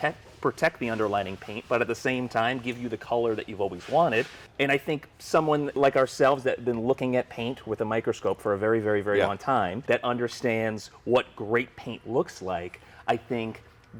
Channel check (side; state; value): both; identical; correlation 1.00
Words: protect the underlining paint, but at the same time give you the color that you've always wanted. And I think someone like ourselves that have been looking at paint with a microscope for a very long time, that understands what great paint looks like, I think